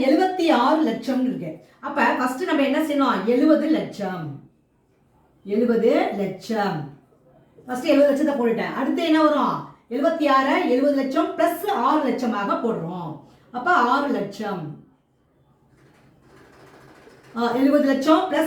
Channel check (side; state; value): both; identical; correlation 1.00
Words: 76 லட்சம் இருக்கு. அப்போ ஃபர்ஸ்ட் நம்ம என்ன செய்யணும்? 70 லட்சம் ஃபர்ஸ்ட் 70 லட்சத்தை போட்டுட்டேன். அடுத்து என்ன வரும்? 76 70 லட்சம் பிளஸ் 6 லட்சமாக போடுறோம். அப்ப 6 லட்சம் 70 லட்சம்